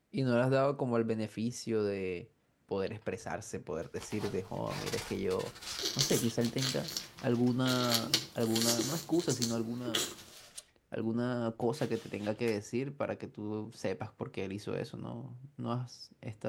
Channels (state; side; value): identical; both; correlation 1.00